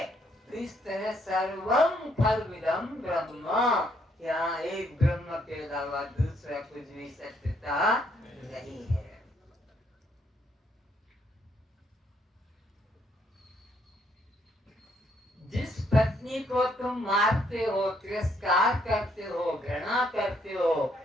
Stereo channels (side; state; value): both; normal; correlation 0.71